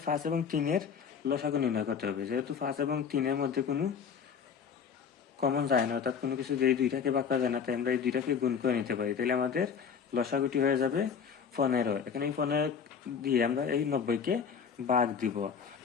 5 এবং 3 এর লসাগু নির্ণয় করতে হবে। যেহেতু 5 এবং 3 এর মধ্যে কোনো কমন যায় না, অর্থাৎ কোনো কিছু দিয়ে দুইটাকে ভাগ করা যায় না, তাই আমরা এই দুইটাকে গুণ করে নিতে পারি। তাহলে আমাদের লসাগুটি হয়ে যাবে 15। এখন এই 15 দিয়ে আমরা এই 90-কে ভাগ দিব।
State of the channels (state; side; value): quieter; right; 6.7 dB